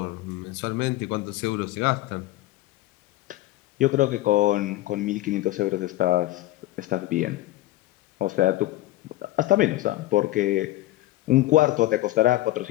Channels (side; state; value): right; quieter; 16.5 dB